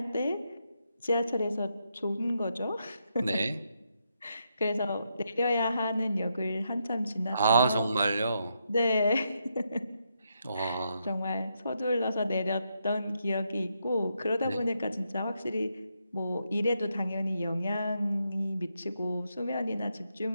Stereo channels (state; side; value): inverted; both; correlation -0.81